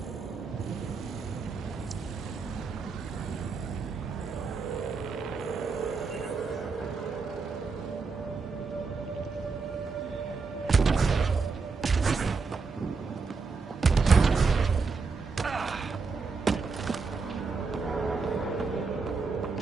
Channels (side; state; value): left; quieter; 4.6 dB